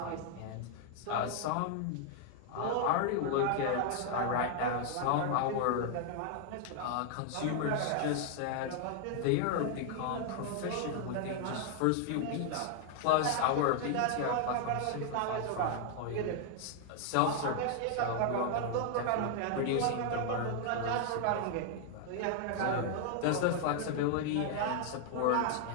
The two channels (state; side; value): different; both; correlation 0.00